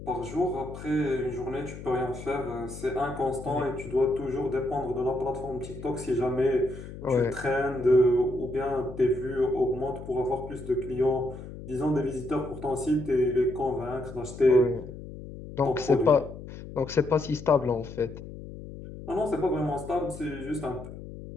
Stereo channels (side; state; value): left; noise; hum, 12 dB below the sound